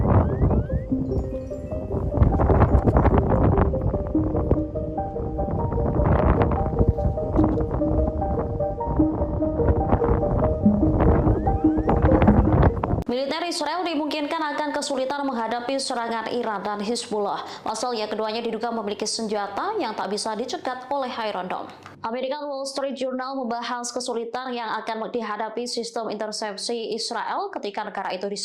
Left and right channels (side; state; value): both; identical; correlation 1.00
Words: Militer Israel dimungkinkan akan kesulitan menghadapi serangan Iran dan Hizbullah. Pasalnya keduanya diduga memiliki senjata yang tak bisa dicegat oleh Iron Dome. American Wall Street Journal membahas kesulitan yang akan dihadapi sistem intersepsi Israel ketika negara itu